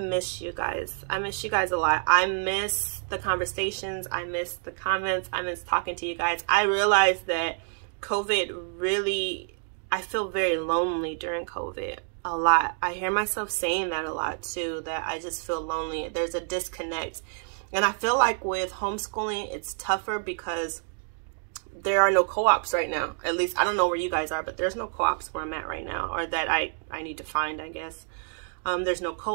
you guys. I miss you guys a lot. I miss the conversations. I miss the comments. I miss talking to you guys. I realized that COVID really, I feel very lonely during COVID a lot. I hear myself saying that a lot too, that I just feel lonely. There's a disconnect. And I feel like with homeschooling, it's tougher because there are no co-ops right now. At least, I don't know where you guys are, but there's no co-ops where I'm at right now, or that I need to find, I guess. There's no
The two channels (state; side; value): silent; left; 55 dB below the other